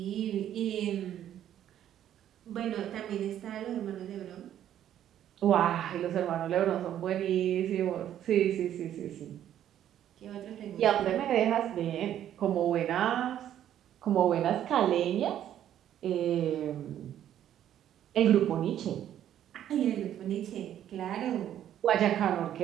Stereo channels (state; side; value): quieter; left; 10.9 dB